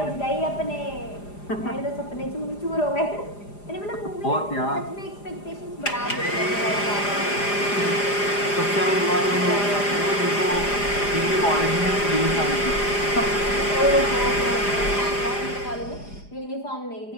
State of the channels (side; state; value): right; late; 4.9 ms